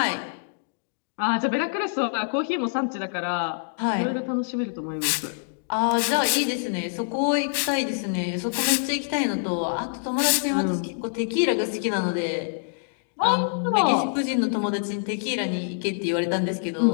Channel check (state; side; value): silent; right; digital silence